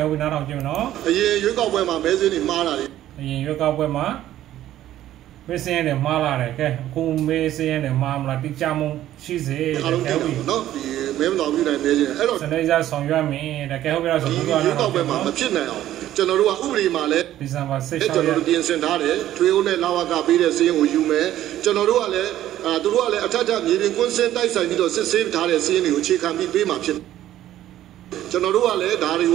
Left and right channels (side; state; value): left; quieter; 13.0 dB